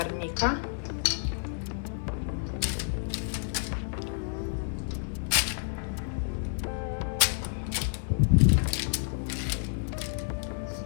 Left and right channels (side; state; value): right; silent; 58 dB below the other